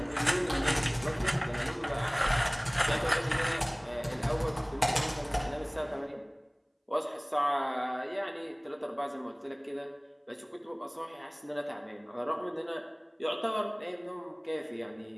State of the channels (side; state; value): both; identical; correlation 1.00